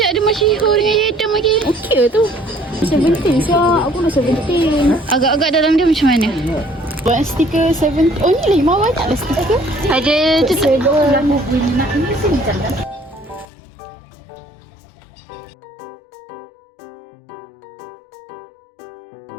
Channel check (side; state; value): right; drops out; at 13.5 s